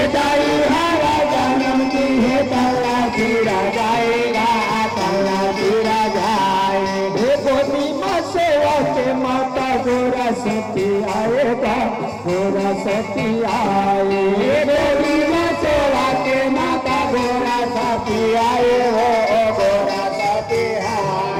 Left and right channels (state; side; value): identical; both; correlation 1.00